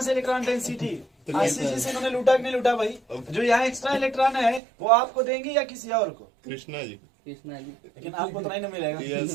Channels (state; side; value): drops out; left; at 4.6 s